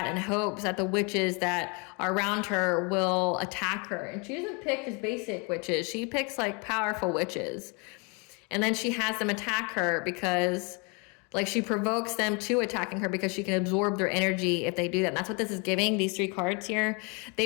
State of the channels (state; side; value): quieter; right; 32.2 dB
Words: in hopes that the witches that are around her will attack her. And she doesn't pick just basic witches. She picks powerful witches. And then she has them attack her because Like she provokes them to attacking her because she can absorb their energy if they do that. And that's what this is giving, these 3 cards here.